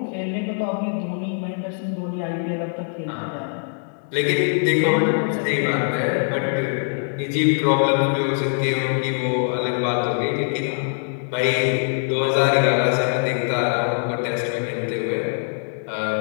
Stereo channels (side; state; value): right; silent; 64 dB below the other